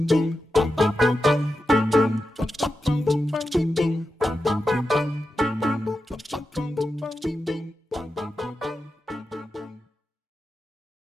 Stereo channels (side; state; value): both; normal; correlation 0.90